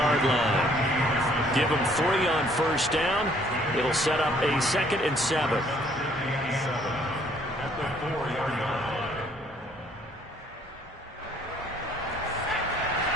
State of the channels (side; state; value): both; normal; correlation 0.62